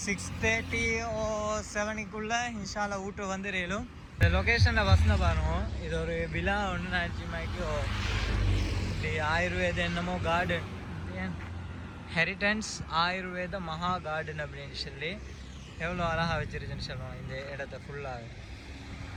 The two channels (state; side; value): identical; both; correlation 1.00